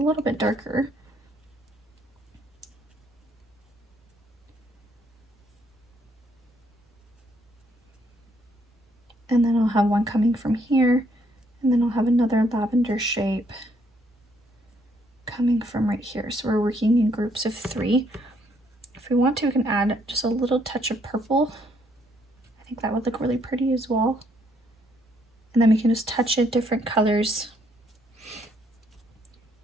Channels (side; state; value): both; normal; correlation 0.70